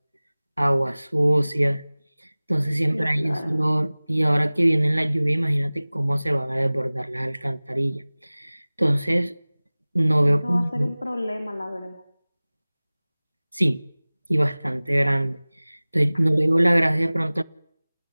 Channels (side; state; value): both; inverted; correlation -0.99